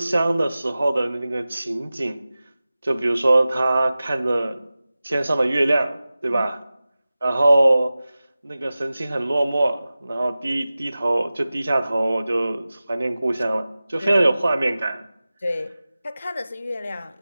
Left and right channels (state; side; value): inverted; both; correlation -0.96